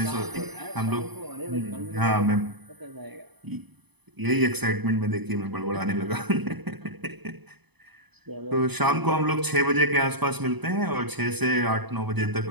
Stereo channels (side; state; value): left; late; 0.99 ms